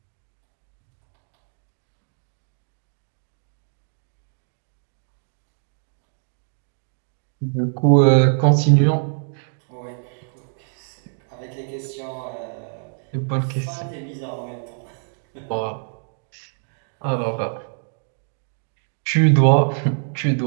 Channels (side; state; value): left; silent; digital silence